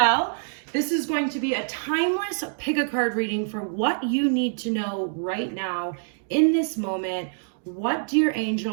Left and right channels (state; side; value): silent; left; digital silence